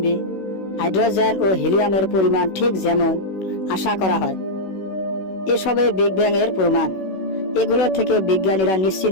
হাইড্রোজেন ও হিলিয়ামের পরিমাণ ঠিক যেমন আশা করা হয়। এসবে বিগ ব্যাং এর প্রমাণ। এগুলো থেকে বিজ্ঞানীরা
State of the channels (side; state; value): right; late; 16 ms